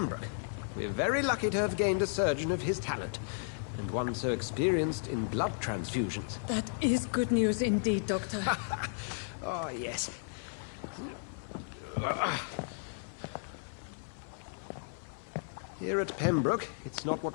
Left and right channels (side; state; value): right; silent; 55 dB below the other